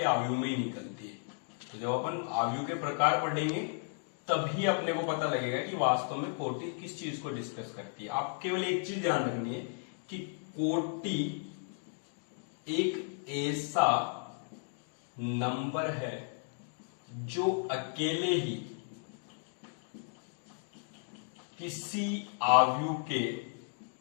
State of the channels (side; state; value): right; silent; 55 dB below the other